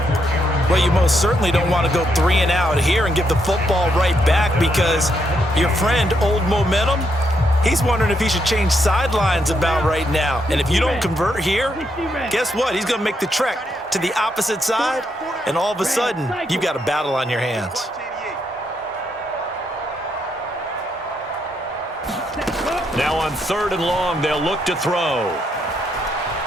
Well, you most certainly don't want to go 3 and out here and give the football right back because your friend, Old Momentum, he's wondering if he should change sidelines about right now. And if you don't convert here, guess what? He's going to make the trek to the opposite side, and all of a sudden, you've got a battle on your hands. Now on 3rd and long, they'll look to throw.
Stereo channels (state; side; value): normal; both; correlation 0.78